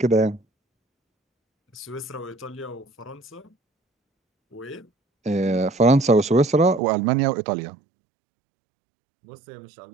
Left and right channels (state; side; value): drops out; left; at 6.8 s